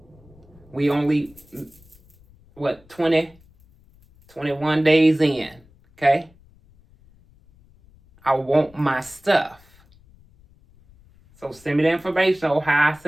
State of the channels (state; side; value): noise; left; rumble, 28 dB below the sound